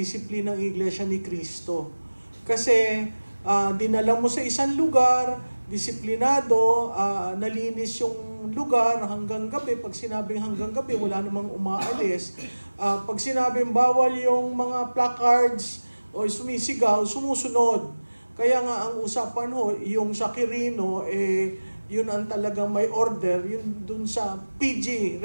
ng Iglesia ni Cristo. Kasi dinala mo sa isang lugar, disiplinado, nalinis yung lugar hanggang gabi. Pag sinabing hanggang gabi, wala namang umaalis. Pag sinabing bawal yung mga placards o sumisigaw, sumusunod. Kaya nga ang usapan ho, yung sa Quirino, yun ang talagang may order, yun dun sa PG,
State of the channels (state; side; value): inverted; both; correlation -1.00